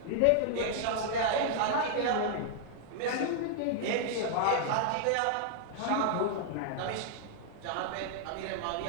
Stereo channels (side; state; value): both; different; correlation -0.01